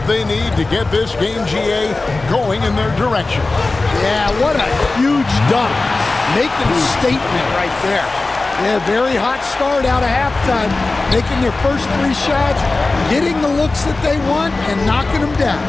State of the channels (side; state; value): right; quieter; 3.4 dB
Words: they need to get this game, GA, going in their direction. Yeah, what a huge dunk. Making a statement right there. Yeah, very hot start out of halftime. Making their first 3 shots, getting the looks that they want, and knocking them down.